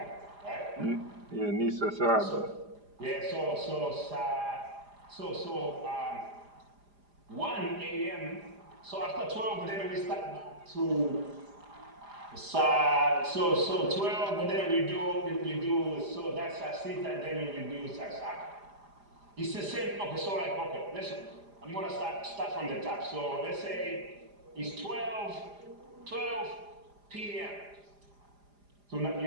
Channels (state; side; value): late; left; 4.9 ms